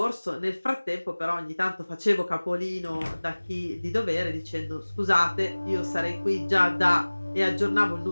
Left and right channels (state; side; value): inverted; both; correlation -1.00